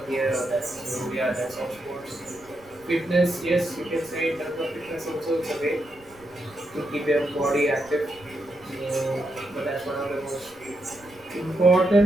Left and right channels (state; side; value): noise; right; rumble, 27 dB below the sound